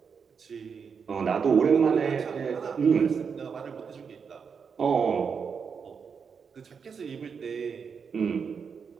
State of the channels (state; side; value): quieter; left; 6.2 dB